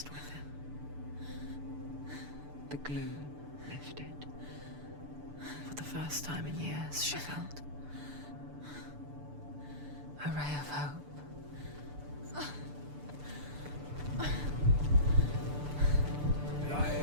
with him. The gloom lifted. For the first time in years, she felt a ray of hope.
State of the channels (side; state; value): left; late; 6.8 ms